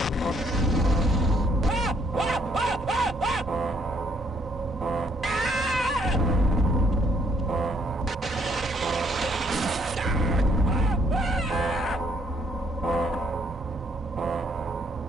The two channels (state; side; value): normal; both; correlation 0.68